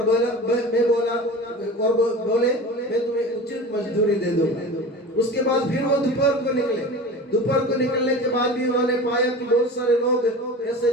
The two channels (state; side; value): normal; both; correlation 0.34